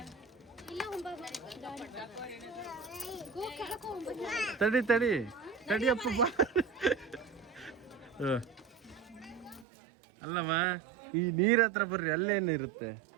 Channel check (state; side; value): drops out; left; at 9.7 s